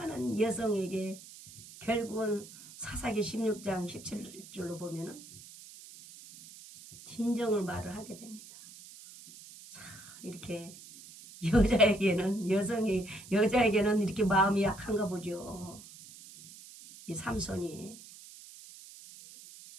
여성에게 결국은 사사기 16장 17절로 보면은 진정을 말을 하게 됩니다. 자, 이렇게 여자에게는 이렇게 마음이 약한가 보죠. 이 삼손이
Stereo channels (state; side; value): noise; right; hiss, 17 dB below the sound